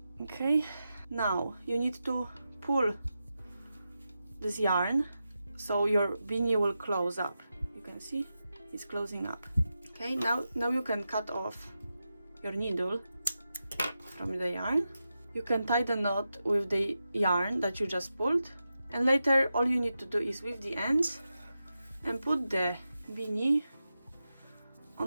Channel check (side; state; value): both; inverted; correlation -0.90